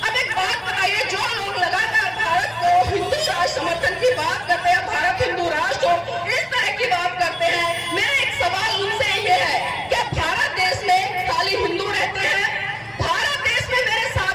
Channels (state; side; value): identical; both; correlation 1.00